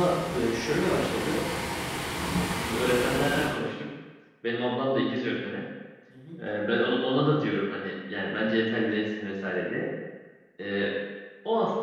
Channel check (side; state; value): both; identical; correlation 1.00